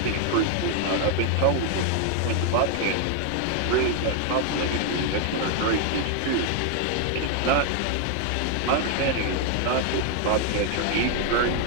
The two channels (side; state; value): both; different; correlation 0.00